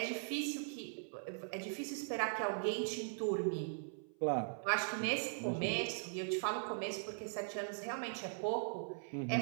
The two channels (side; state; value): left; silent; 51 dB below the other